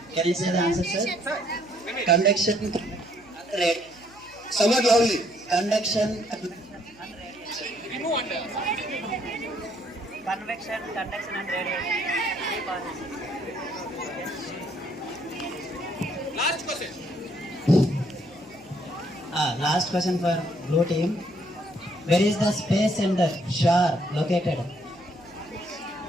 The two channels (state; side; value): noise; left; hum, 26 dB below the sound